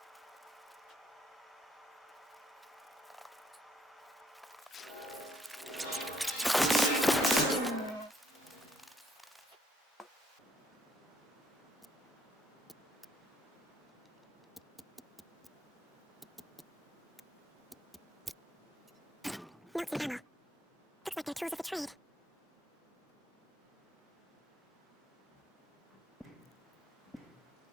Notes and ammo. Looks like they're tools of the trade.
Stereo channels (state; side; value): normal; both; correlation 0.69